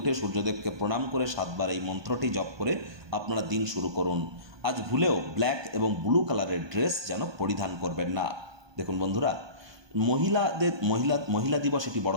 সূর্যদেবকে প্রণাম করে 7 বার এই মন্ত্রটি জপ করে আপনারা দিন শুরু করুন। আজ ভুলেও ব্ল্যাক এবং ব্লু কালারের ড্রেস যেন পরিধান করবেন না। দেখুন বন্ধুরা, মহিলা দিবস এটি বড়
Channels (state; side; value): late; left; 1.2 ms